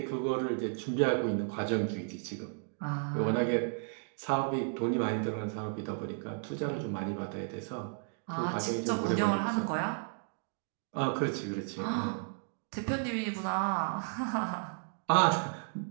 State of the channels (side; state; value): left; silent; 55 dB below the other